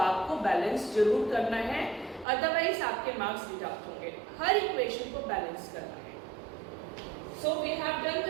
बैलेंस जरूर करना है, अदरवाइज आपके मार्क्स डिडक्ट होंगे. हर इक्वेशन को बैलेंस करना है. So we have done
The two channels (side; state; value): left; drops out; at 2.2 s